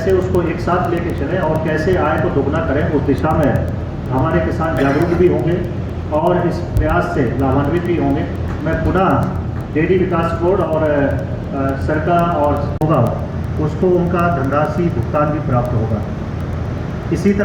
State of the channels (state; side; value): identical; both; correlation 1.00